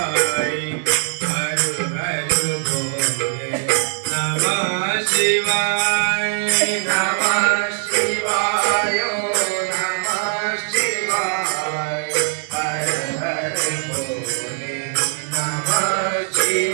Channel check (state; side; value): silent; left; digital silence